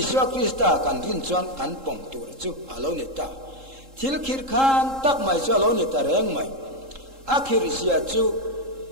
Krista kan rin chuan kan pong tur chu alo ni ta thil khir khan tak mai chu alo ni ta reng mai akhir sia chu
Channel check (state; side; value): late; left; 3.7 ms